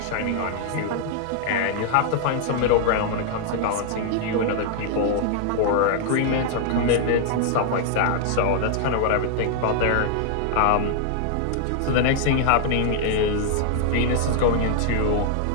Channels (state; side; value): different; both; correlation -0.01